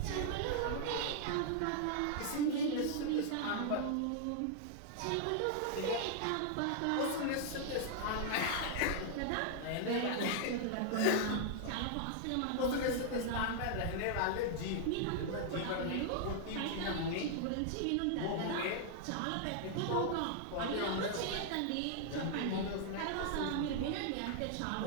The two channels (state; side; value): different; both; correlation 0.00